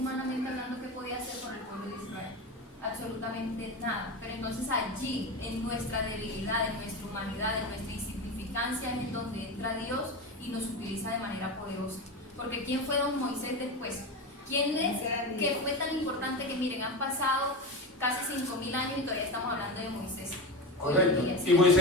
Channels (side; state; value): both; normal; correlation 0.21